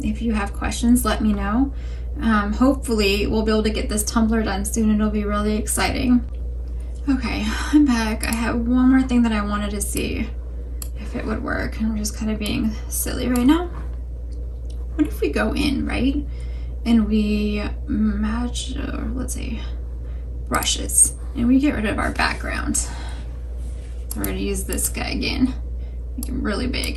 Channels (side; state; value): both; identical; correlation 1.00